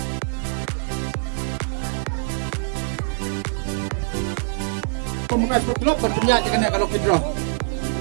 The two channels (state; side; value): silent; left; digital silence